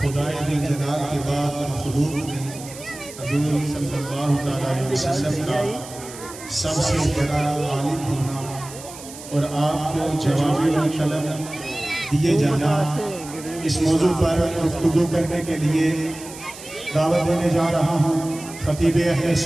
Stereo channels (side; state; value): right; noise; hiss, 15 dB below the sound